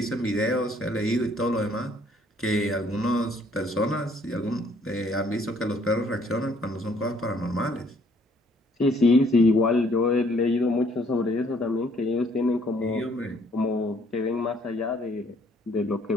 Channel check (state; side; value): normal; both; correlation 0.64